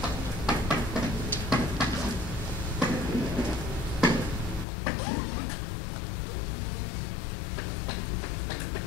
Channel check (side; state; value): right; drops out; at 4.7 s